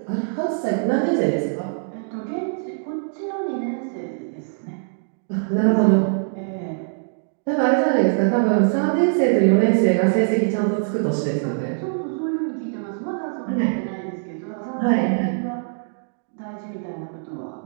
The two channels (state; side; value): silent; left; digital silence